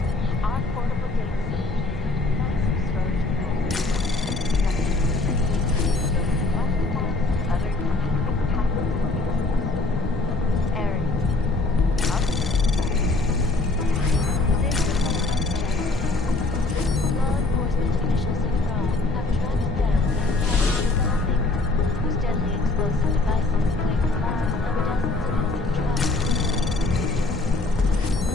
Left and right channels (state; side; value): quieter; right; 3.2 dB